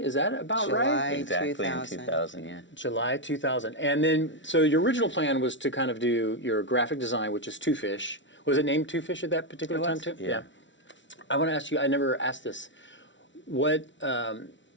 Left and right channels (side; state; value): right; late; 0.55 ms